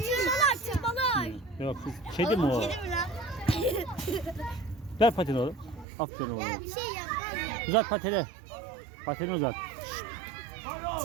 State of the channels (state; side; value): drops out; left; at 5.9 s